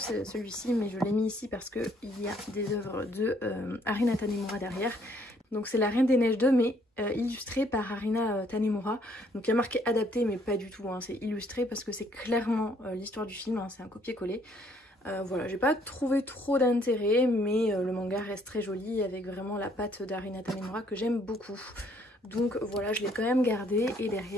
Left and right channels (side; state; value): both; normal; correlation 0.65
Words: celui-ci, mais je l'ai mis ici parce qu'il y a des œuvres de Harina Tanemura derrière. Donc c'est la Reine des Neiges 2, mais illustrée par Harina Tanemura. Donc il y a marqué adapté, mais pas du tout, hein. C'est illustré parce que c'est clairement l'histoire du film, hein. C'est un copier-coller. Voilà, j'ai pas trouvé trop d'intérêt, mais le manga reste très joli avec vraiment la patte d'Harina Tanemura que j'aime beaucoup. Donc voilà, je l'ai quand même gardé. Et